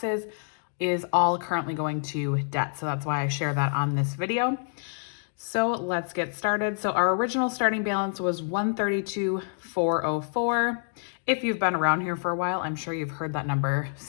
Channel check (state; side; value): silent; right; digital silence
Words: is all currently going to debt, so that's why I share that on this video. So let's get started. So our original starting balance was $132,404. If you've been around here for a while, I'm sure you've heard that number